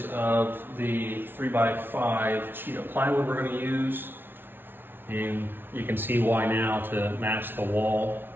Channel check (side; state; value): left; late; 0.10 ms